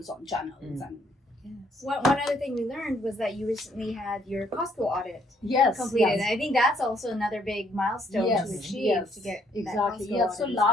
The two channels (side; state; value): both; normal; correlation 0.68